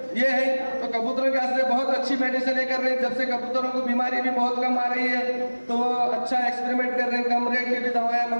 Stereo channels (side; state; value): both; inverted; correlation -1.00